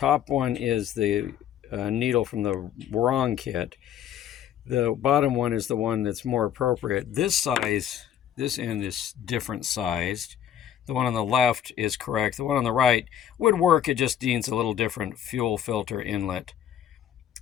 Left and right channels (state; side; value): quieter; right; 10.2 dB